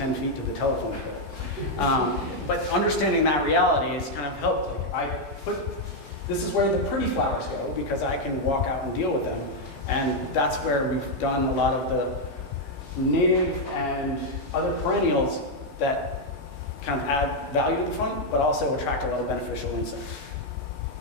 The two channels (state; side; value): late; right; 8.6 ms